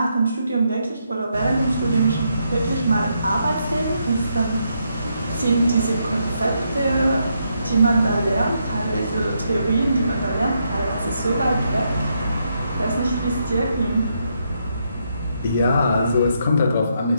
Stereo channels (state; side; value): inverted; both; correlation -0.78